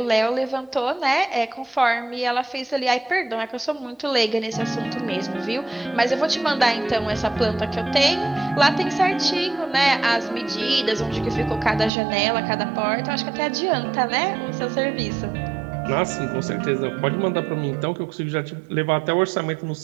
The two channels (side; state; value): left; drops out; at 11.9 s